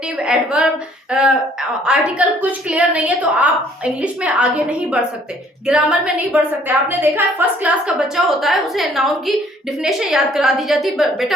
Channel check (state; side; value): normal; both; correlation 0.60